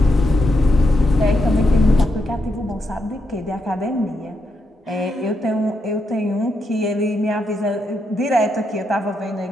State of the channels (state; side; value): normal; both; correlation 0.82